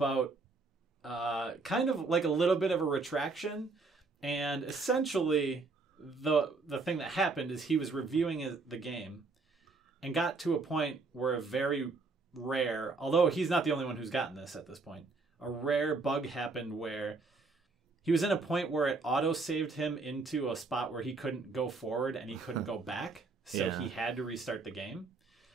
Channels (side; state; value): left; quieter; 4.0 dB